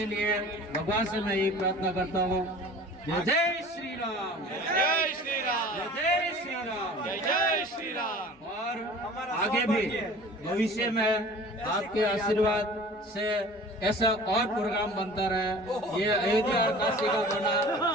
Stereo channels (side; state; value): both; normal; correlation 0.43